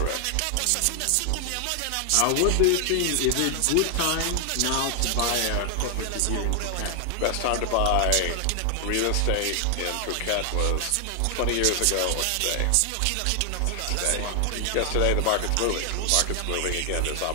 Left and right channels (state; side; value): different; both; correlation 0.00